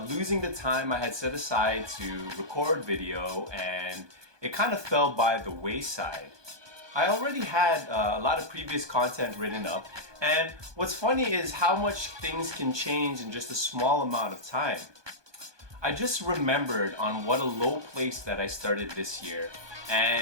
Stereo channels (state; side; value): late; left; 1.2 ms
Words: losing the time I had set aside to record video, and it kind of fell by the wayside. I already had a lot of previous content written up, and what's funny is how much things can change in just a small amount of time. I just remembered on what a low place that I started this year,